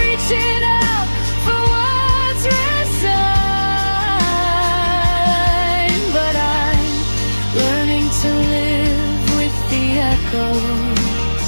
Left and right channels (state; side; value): inverted; both; correlation -1.00